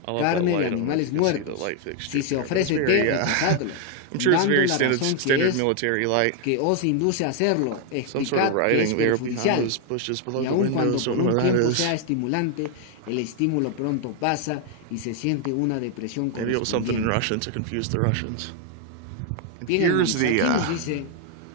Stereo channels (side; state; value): both; different; correlation 0.00